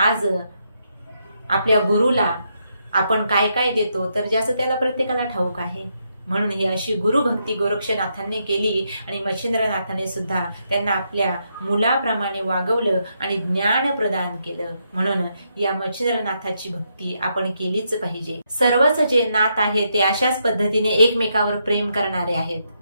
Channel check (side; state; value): both; inverted; correlation -0.80